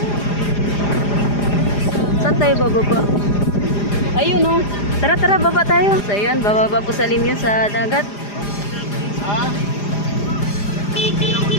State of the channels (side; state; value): right; late; 4.9 ms